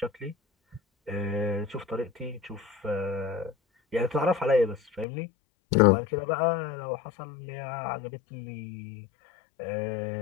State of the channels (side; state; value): right; drops out; at 5.1 s